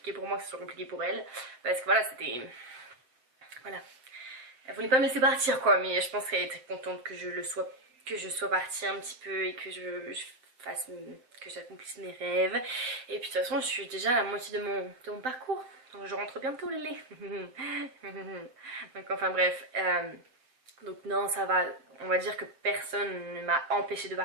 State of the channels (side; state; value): left; late; 7.8 ms